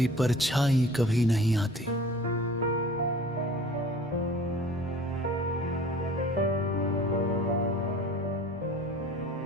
परछाई कभी नहीं आती।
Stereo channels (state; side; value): normal; both; correlation 0.45